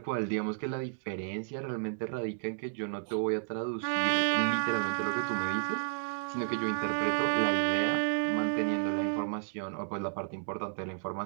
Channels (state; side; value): silent; left; digital silence